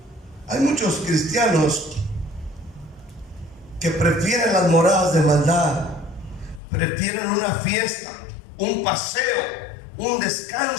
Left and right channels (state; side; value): drops out; right; at 6.6 s